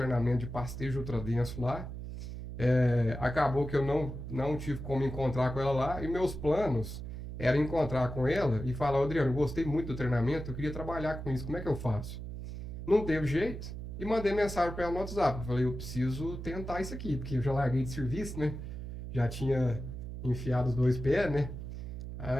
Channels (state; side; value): noise; right; hum, 8 dB below the sound